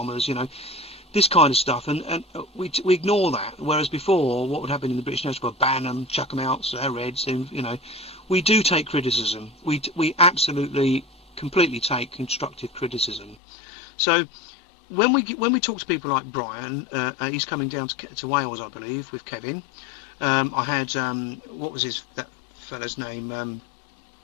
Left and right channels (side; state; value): right; drops out; at 13.4 s